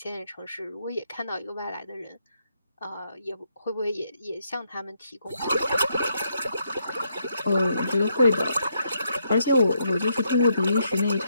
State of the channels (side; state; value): both; inverted; correlation -0.77